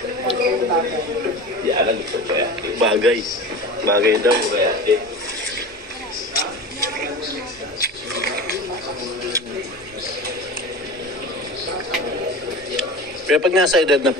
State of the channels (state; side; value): normal; both; correlation 0.32